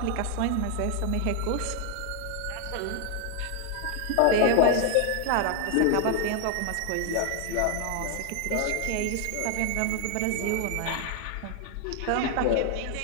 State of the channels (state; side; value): different; both; correlation 0.00